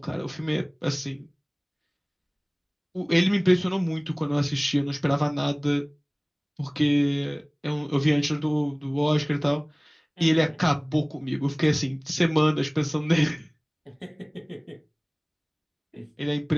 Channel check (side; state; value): both; identical; correlation 1.00